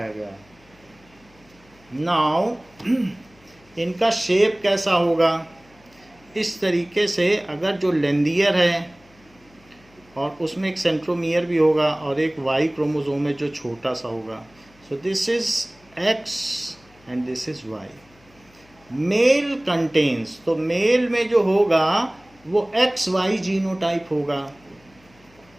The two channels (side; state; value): left; noise; hum, 29 dB below the sound